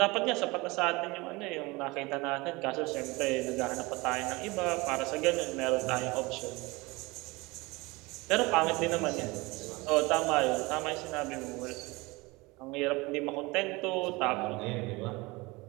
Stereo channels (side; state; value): left; quieter; 23.5 dB